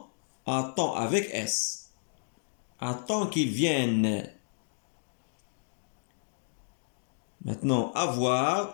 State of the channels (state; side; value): silent; right; digital silence